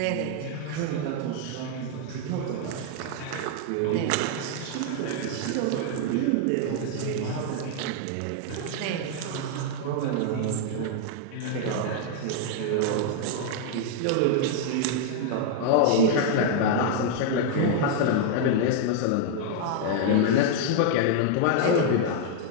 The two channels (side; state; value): both; different; correlation 0.00